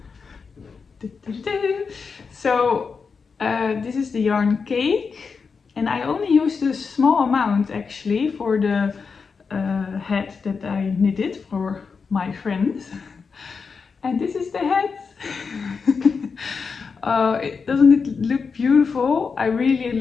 So this is the yarn cake, and I only used a small amount actually for the hat that I knitted for my friends. And this is the hat. Doesn't it look beautiful? I really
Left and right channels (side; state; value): right; quieter; 5.3 dB